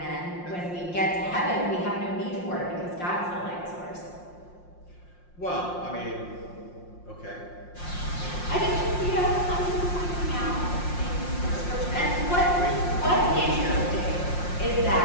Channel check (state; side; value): late; right; 5.6 ms